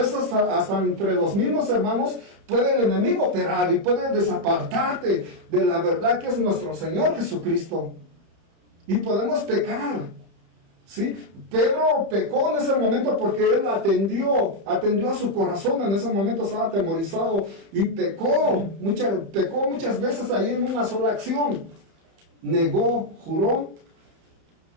hasta entre los mismos hermanos puede el enemigo operar y puede desapartarte de la verdad que es nuestro Señor Jesucristo. Y podemos pecar, ¿sí? Pedro pecó en ese momento porque él atendió a su corazón. En ese momento estaba atemorizado y pecó muchas veces ahí en una sola acción. Negó, juró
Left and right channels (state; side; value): late; left; 31 ms